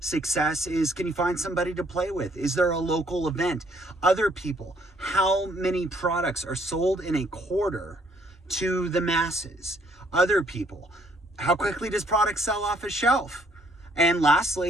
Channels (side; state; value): both; normal; correlation 0.66